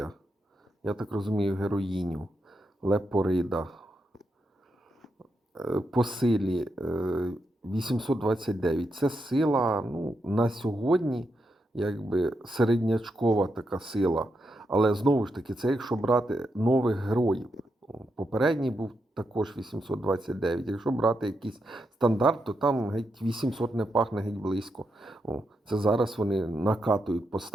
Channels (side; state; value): both; normal; correlation 0.84